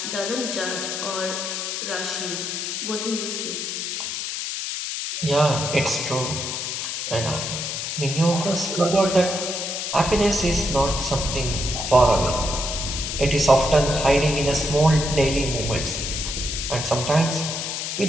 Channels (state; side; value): noise; left; hiss, 4 dB below the sound